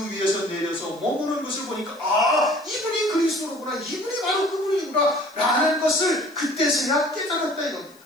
위에서 내려서 머무는 것을 보니까 이분이 그리스도로구나, 이분이 바로 그분이구나 라는 것을 그때서야 깨달았다 이겁니다.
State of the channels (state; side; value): noise; left; hiss, 27 dB below the sound